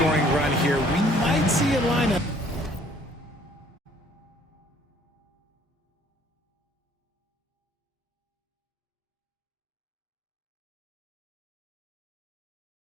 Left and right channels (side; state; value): both; normal; correlation 0.59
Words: run here, we might see a lineup.